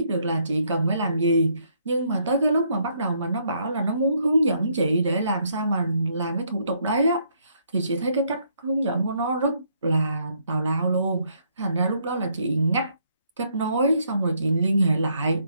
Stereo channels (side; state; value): both; inverted; correlation -0.71